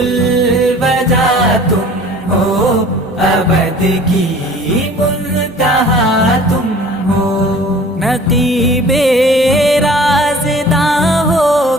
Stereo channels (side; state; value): both; normal; correlation 0.47